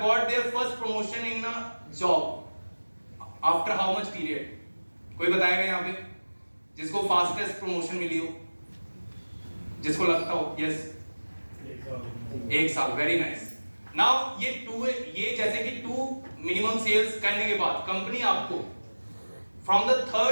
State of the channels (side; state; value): both; inverted; correlation -1.00